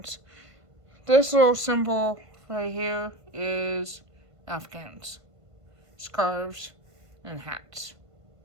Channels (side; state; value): left; late; 1.5 ms